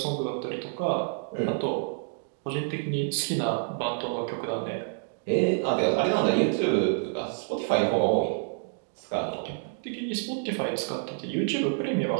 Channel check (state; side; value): silent; left; digital silence